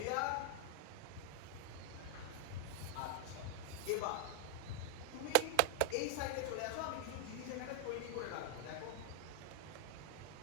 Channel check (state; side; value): different; both; correlation 0.00